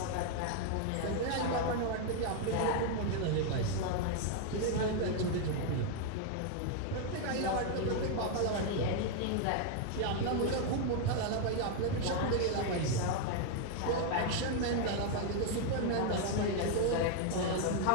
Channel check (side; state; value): both; different; correlation 0.00